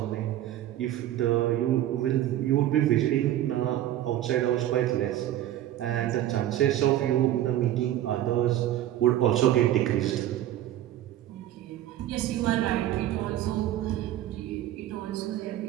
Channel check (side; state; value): left; quieter; 13.0 dB